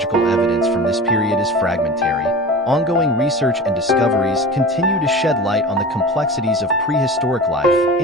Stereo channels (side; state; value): both; normal; correlation 0.34